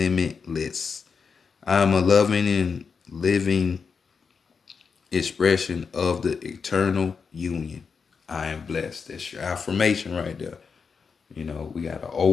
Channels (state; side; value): quieter; right; 5.6 dB